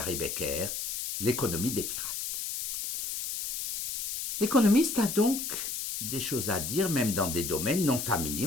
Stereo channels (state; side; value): noise; left; hiss, 3 dB below the sound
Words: Becker, l'économie des pirates. L'économiste a donc des choses à dire, même dans des domaines non familiers,